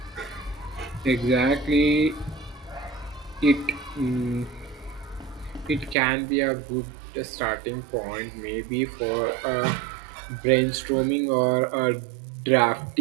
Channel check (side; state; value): left; drops out; at 6.0 s